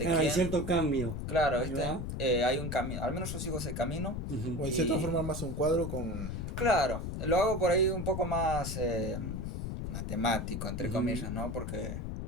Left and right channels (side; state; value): left; noise; rumble, 4 dB below the sound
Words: Claro, hay quién. cierto cambio. Claro, Ahí ¿viste? va. Hay un camino. Al menos yo sigo ese camino. Ujú. O en cierta Y- forma más un cuadro con... Claro, lo hago por ahí un poco más matemático, entre comillas, ¿no? Porque,